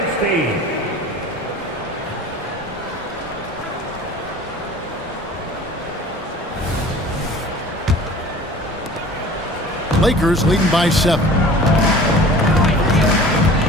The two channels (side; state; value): both; normal; correlation 0.44